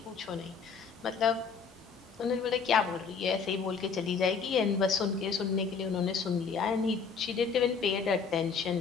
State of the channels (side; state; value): right; quieter; 5.6 dB